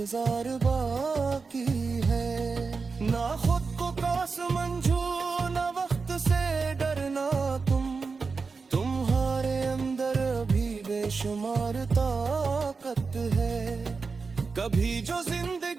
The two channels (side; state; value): left; quieter; 4.6 dB